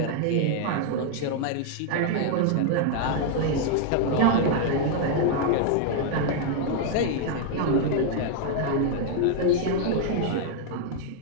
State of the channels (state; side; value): different; both; correlation 0.00